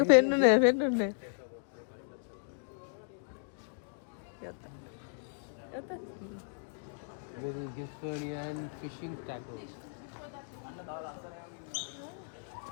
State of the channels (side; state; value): right; silent; digital silence